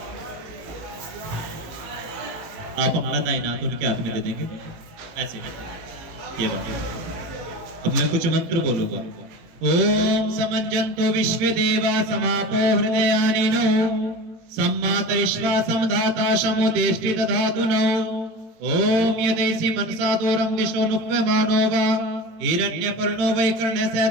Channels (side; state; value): left; late; 18 ms